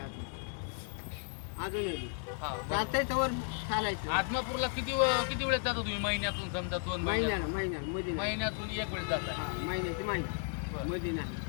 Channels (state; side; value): silent; right; 55 dB below the other